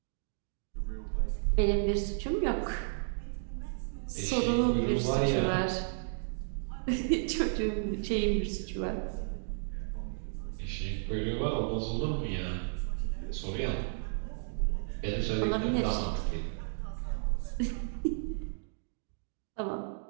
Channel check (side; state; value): left; silent; digital silence